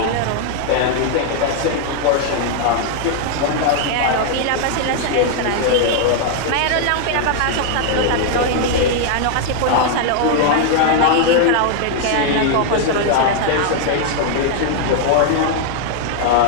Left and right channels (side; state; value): both; different; correlation 0.00